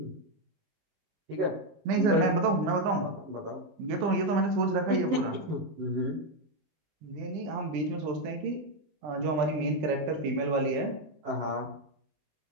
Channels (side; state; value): left; late; 20 ms